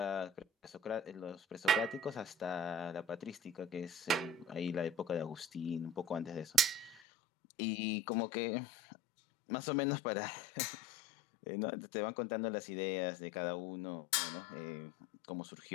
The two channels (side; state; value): right; drops out; at 7.0 s